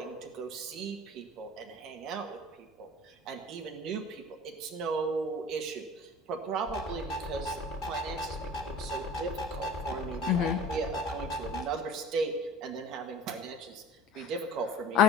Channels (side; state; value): both; normal; correlation 0.41